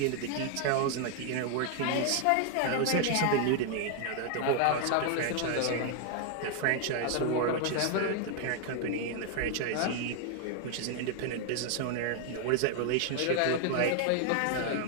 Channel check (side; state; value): both; different; correlation 0.00